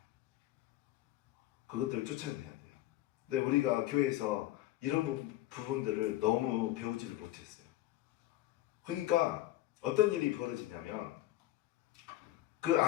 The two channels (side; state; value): right; quieter; 15.3 dB